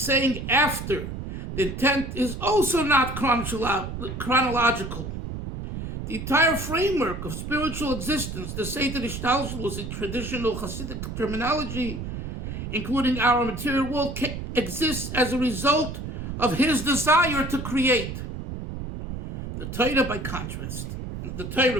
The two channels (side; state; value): right; noise; rumble, 7 dB below the sound